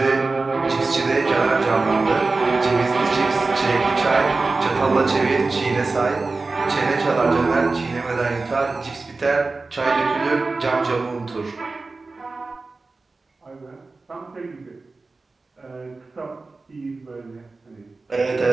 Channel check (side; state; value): left; quieter; 3.7 dB